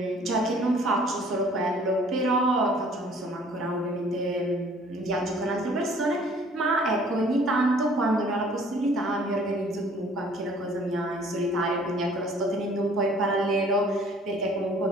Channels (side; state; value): both; normal; correlation 0.55